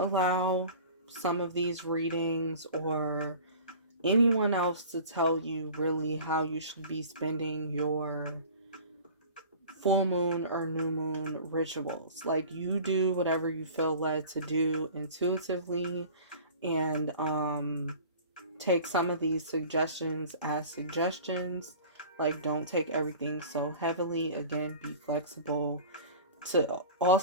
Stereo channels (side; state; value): both; inverted; correlation -0.41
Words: allow some of these readings or anyone else to tell you really how you should be spending your full moon or new moon rituals. Like, you do whatever you feel led to do intuitively, and take some of these suggestions as suggestions. Like, don't take everything so heavily. Again, be flexible to